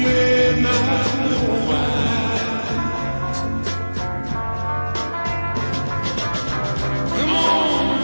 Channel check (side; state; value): both; inverted; correlation -1.00